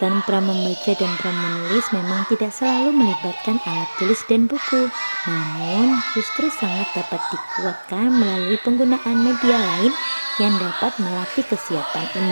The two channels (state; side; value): inverted; both; correlation -1.00